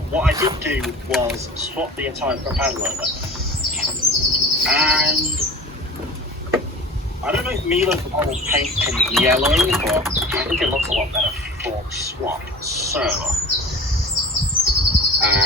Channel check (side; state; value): both; normal; correlation 0.37